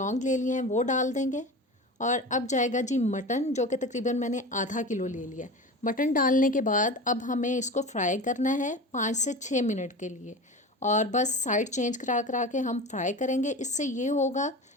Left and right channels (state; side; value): normal; both; correlation 0.31